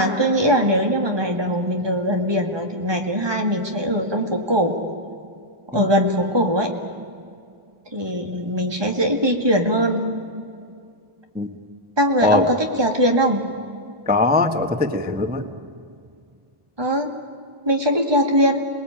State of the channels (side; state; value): left; late; 1.2 ms